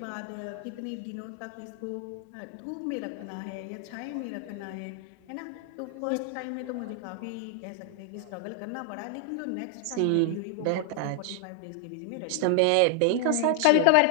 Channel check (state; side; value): different; both; correlation 0.00